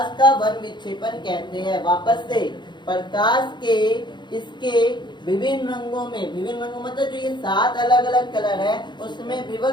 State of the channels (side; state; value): right; late; 0.22 ms